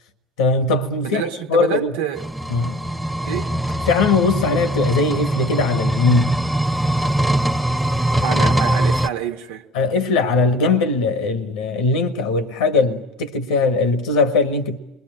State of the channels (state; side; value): normal; both; correlation 0.40